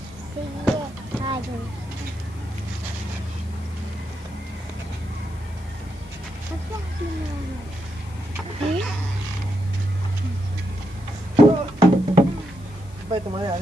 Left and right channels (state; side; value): noise; left; hiss, 26 dB below the sound